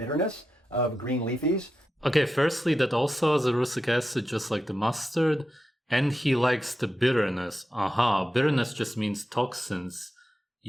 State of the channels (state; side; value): normal; both; correlation 0.89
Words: of green leafies. Okay, firstly, that also has erucic acid, just like the mustard. And he likes the bitterness. Aha, bitterness just means toxins.